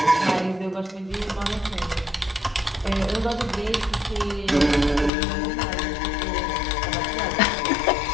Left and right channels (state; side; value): drops out; right; at 5.1 s